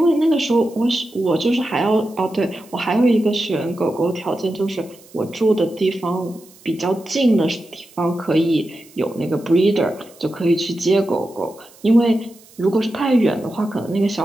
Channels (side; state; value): right; noise; hiss, 25 dB below the sound